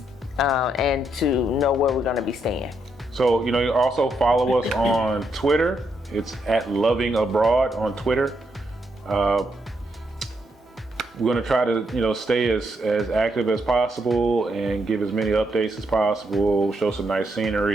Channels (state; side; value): normal; both; correlation 0.78